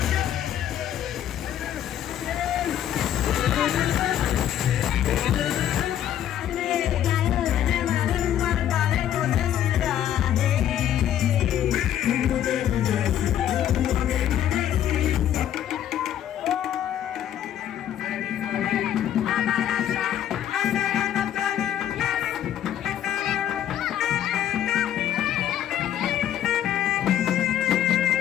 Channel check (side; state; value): right; quieter; 10.8 dB